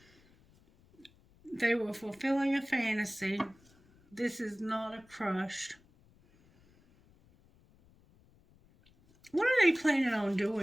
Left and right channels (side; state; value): left; noise; rumble, 29 dB below the sound